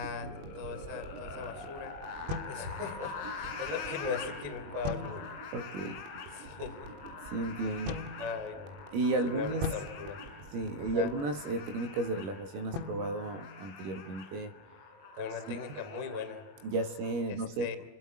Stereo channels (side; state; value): left; late; 21 ms